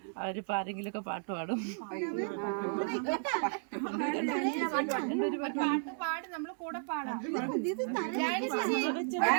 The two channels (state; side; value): silent; left; 55 dB below the other